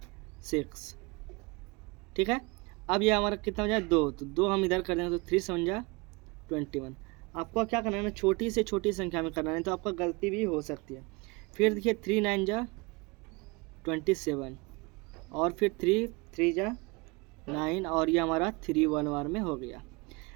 6, ठीक है। अब ये हमारा कितना हो जाए 2, तो 2 हम इधर कर देंगे, तो 3 7 जा 21। आपको क्या करना है ना, छोटी से छोटी संख्या में करना है, तो आपका गलती भी हो सकती है। फिर देखिए 3 9 जा 27, और फिर 3 3 जा 9, और ये हमारा 3 1 बार में हो गया।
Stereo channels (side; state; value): left; quieter; 26.6 dB